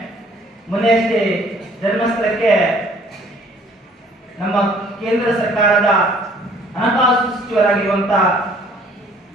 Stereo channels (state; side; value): normal; both; correlation 0.57